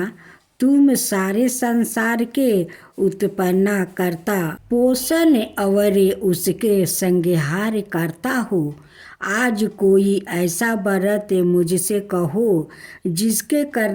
तुम सारे संसार के उत्पन्न करता, पोषण और उसके संहार करता हो। आज कोई ऐसा व्रत मुझसे कहो जिसके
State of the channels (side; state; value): both; identical; correlation 1.00